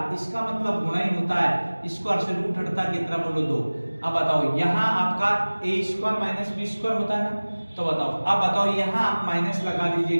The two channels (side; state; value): both; inverted; correlation -1.00